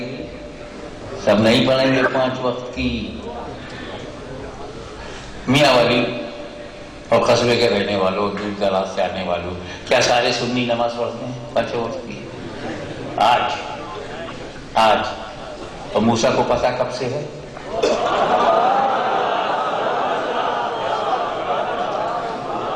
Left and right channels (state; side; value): identical; both; correlation 1.00